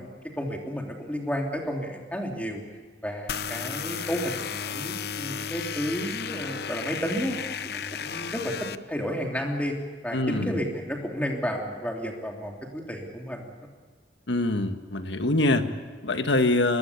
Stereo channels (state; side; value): normal; both; correlation 0.48